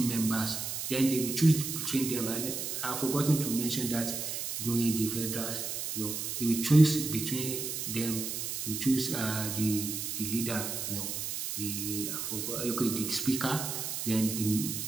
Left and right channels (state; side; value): noise; right; hiss, 4 dB below the sound